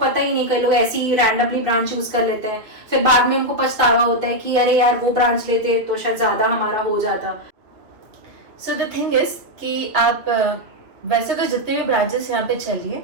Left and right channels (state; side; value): late; left; 2.4 ms